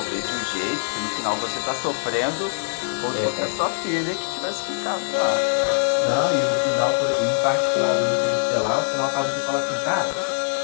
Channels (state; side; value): silent; right; digital silence